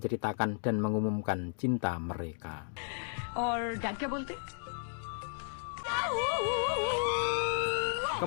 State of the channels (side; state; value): right; silent; digital silence